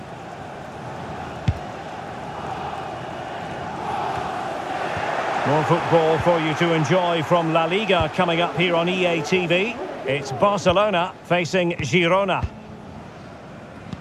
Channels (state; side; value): identical; both; correlation 1.00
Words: More football for you to enjoy from La Liga coming up here on EA TV. It's Barcelona facing Girona.